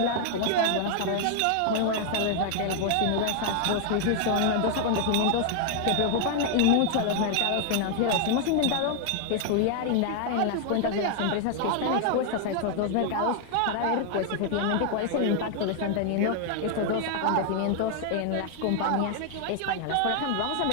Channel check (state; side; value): different; both; correlation 0.00